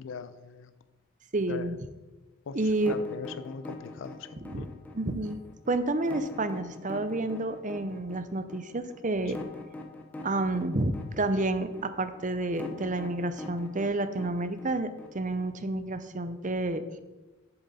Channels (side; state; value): both; normal; correlation 0.43